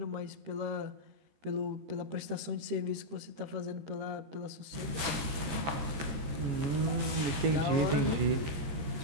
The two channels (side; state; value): left; late; 13 ms